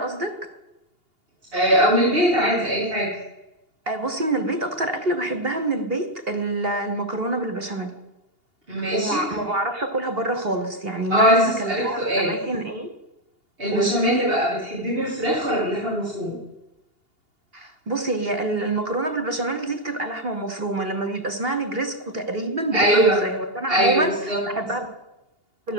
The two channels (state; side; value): late; left; 2.8 ms